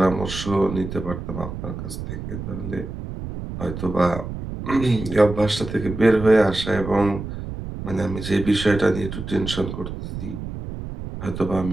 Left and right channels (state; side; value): noise; right; rumble, 8 dB below the sound